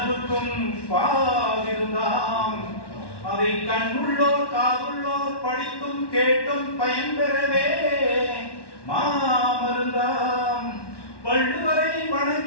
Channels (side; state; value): right; late; 1.1 ms